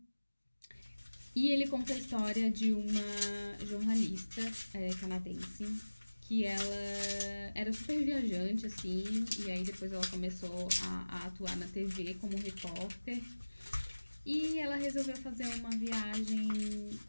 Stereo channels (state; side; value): inverted; both; correlation -1.00